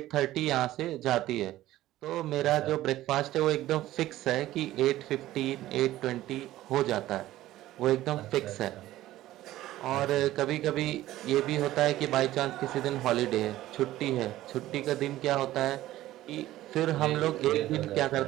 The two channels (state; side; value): quieter; left; 15.1 dB